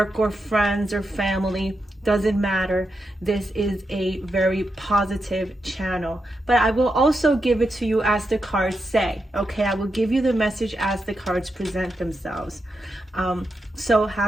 or friends or family. Doesn't matter. This is a very positive channel, but I will also give it to you as the cards say. Okay, I will give you the message as the cards present themselves. So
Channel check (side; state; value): both; normal; correlation 0.86